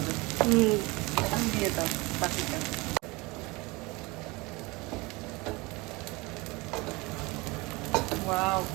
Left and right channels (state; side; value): quieter; left; 24.4 dB